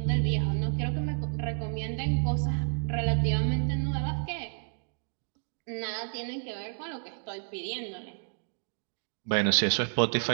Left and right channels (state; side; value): silent; left; digital silence